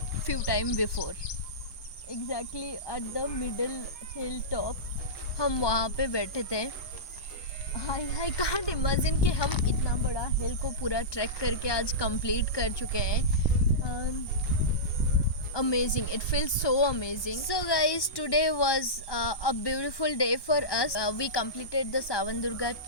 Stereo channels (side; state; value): right; late; 1.2 ms